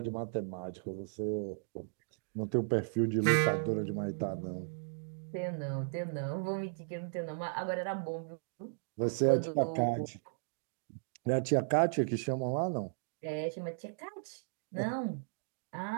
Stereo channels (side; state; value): left; silent; digital silence